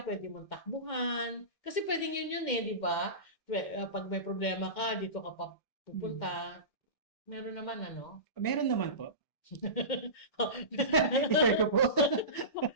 pwede mong takbuhan. Kasi pwedeng yun di ba? Pag may problema ka, dito ka pa pupunta. Meron naman, Meron naman po. I-share ko po.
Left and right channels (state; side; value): late; right; 2.1 ms